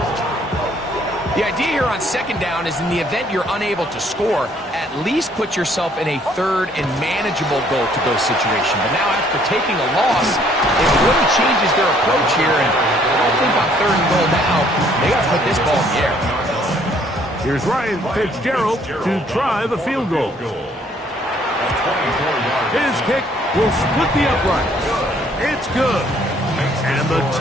The idea here on second down is in the event you're unable to score, at least put yourself in a third and manageable goal-to-go situation. But now after taking a loss, it really changes their approach here. And I think on third and goal now, they got to put this ball in the air. Here's Ryan Fitzgerald to try the field goal. His kick will split the uprights. It's good. And the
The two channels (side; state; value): both; normal; correlation 0.63